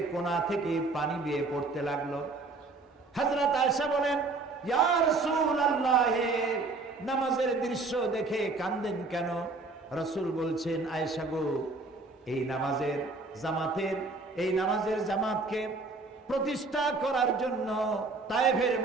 কোণা থেকে পানি বেয়ে পড়তে লাগলো। হযরত আয়েশা বলেন, ইয়া রাসূলুল্লাহ, নামাজের দৃশ্য দেখে কাঁদেন কেন? রাসূল বলছেন, আয়েশা গো, এই নামাজের জামাতকে প্রতিষ্ঠা করার জন্য তায়েফের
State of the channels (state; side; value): quieter; left; 3.6 dB